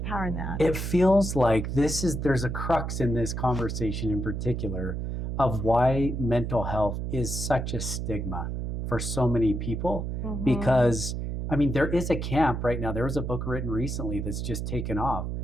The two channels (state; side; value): noise; right; hum, 3 dB below the sound